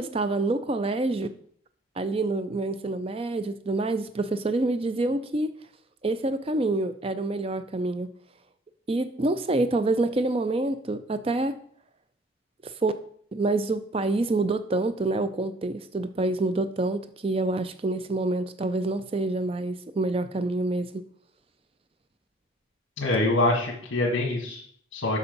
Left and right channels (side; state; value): both; normal; correlation 0.55